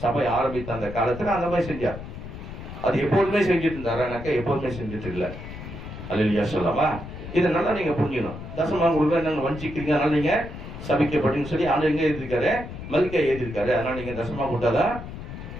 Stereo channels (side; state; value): left; noise; rumble, 11 dB below the sound